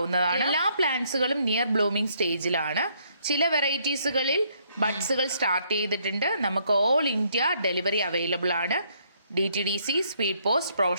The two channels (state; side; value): inverted; both; correlation -0.69